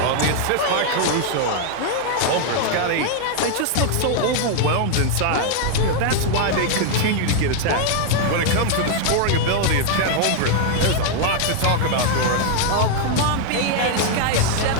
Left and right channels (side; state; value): both; different; correlation 0.00